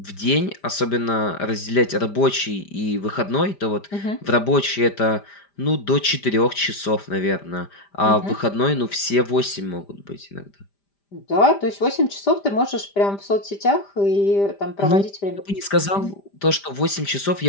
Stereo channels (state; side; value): late; right; 5.0 ms